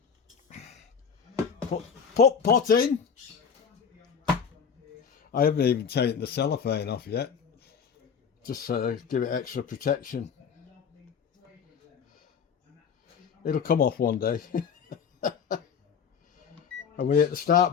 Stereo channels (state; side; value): quieter; right; 6.7 dB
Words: put pot in. I haven't even taken the cellophane off yet. Just give it extra protection. It'll come off one day. And we hit the start